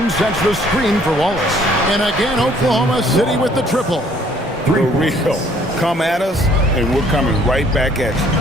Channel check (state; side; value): normal; both; correlation 0.61